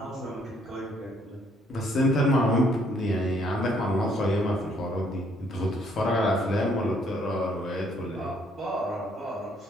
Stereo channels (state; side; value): normal; both; correlation 0.67